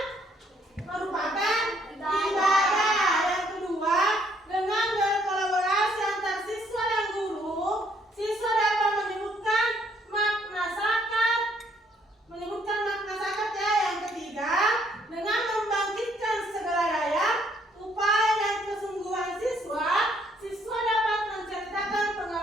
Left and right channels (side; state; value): both; normal; correlation 0.67